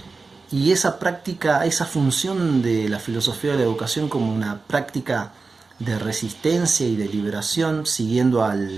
Y esa práctica, esa función de la filosofía de la educación como una práctica de resistencia y de liberación, siguiendo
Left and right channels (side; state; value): left; quieter; 4.1 dB